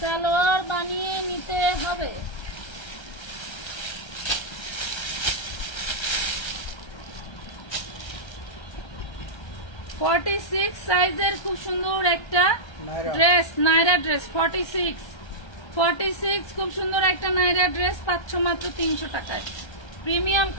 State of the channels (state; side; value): late; right; 1.3 ms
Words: বানিয়ে নিতে হবে। ফর্টি 46 সাইজের খুব সুন্দর একটা ড্রেস, নাইরা ড্রেস, 46 খুব সুন্দর একটা নাইরা ড্রেস পাচ্ছ মাত্র 300 টাকায়, প্রিমিয়াম